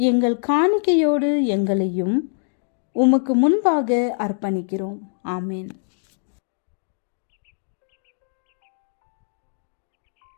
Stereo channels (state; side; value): silent; right; digital silence